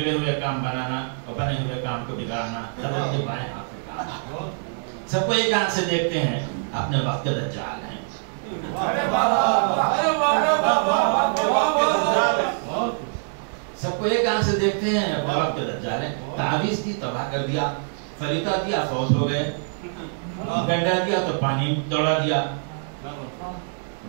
ہوئے کام بنانا اور بنے ہوئے کام کو بگاڑنا حضرت کے بائیں ہاتھ میں کام۔ سب کو ایک آنکھ سے دیکھتے ہیں، اپنے وقت کے دجال ہیں۔ سب کو ایک آنکھ سے دیکھتے ہیں، اپنے وقت کے دجال ہیں۔ تعویذ دی تباہ کر دیا، فریتا دیا فوت ہو گئے، گنڈا دیا تو پانی دوڑا دیا،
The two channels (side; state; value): left; silent; digital silence